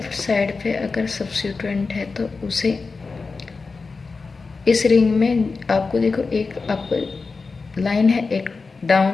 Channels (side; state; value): right; quieter; 4.3 dB